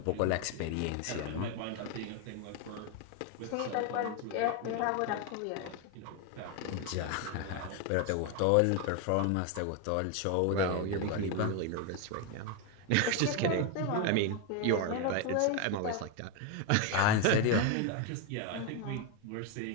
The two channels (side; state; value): both; different; correlation 0.02